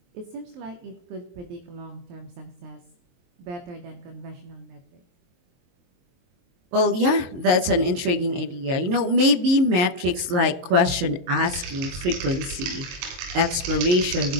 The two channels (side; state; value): left; late; 23 ms